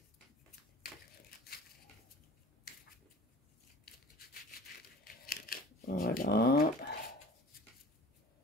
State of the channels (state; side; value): normal; both; correlation 0.43